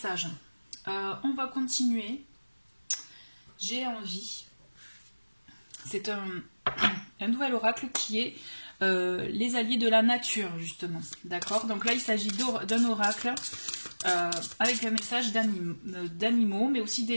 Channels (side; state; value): both; inverted; correlation -1.00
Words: On va continuer. J'ai envie. C'est un nouvel oracle qui est les alliés de la nature, justement. D'accord? Donc là, il s'agit d'un oracle avec un message d'animaux, mais aussi